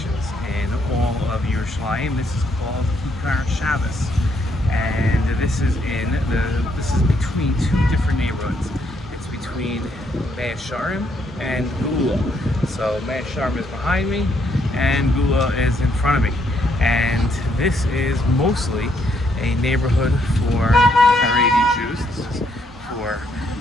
in all of Yerushalayim. This is called Kikar Shabbos, and this is between two different neighborhoods. It's between Meah Shearim and Gula. So Meah Shearim is behind me, and Gula is in front of me. And this is mostly a neighborhood for Haredi Jews. This is for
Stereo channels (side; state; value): both; normal; correlation 0.73